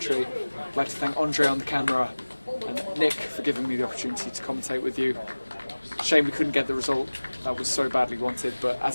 I'd like to thank Andre on the camera and Nick for giving me the opportunity to commentate with you. Shame we couldn't get the result that was so badly wanted, but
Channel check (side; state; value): both; inverted; correlation -1.00